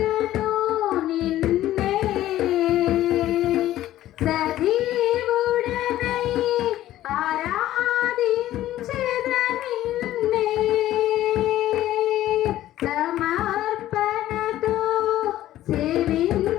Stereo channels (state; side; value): quieter; right; 13.8 dB